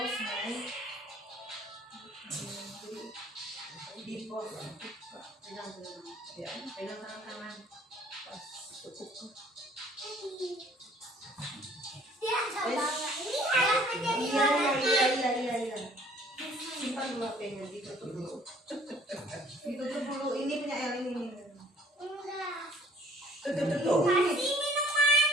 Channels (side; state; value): both; normal; correlation 0.56